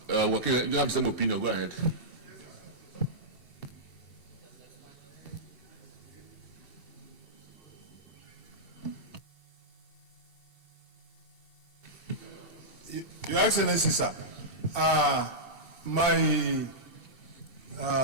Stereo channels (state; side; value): late; right; 2.7 ms